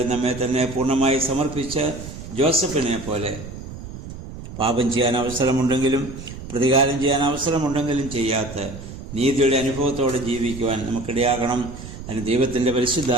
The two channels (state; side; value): noise; right; rumble, 12 dB below the sound